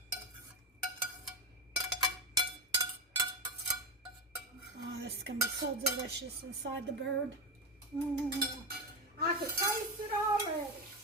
Oh, this is going to be so delicious inside the bird. I can taste it already.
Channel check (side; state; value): both; normal; correlation 0.13